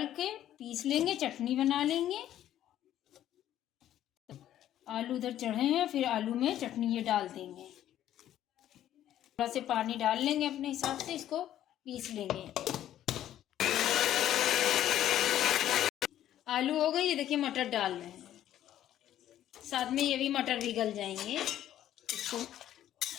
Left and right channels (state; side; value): quieter; right; 11.9 dB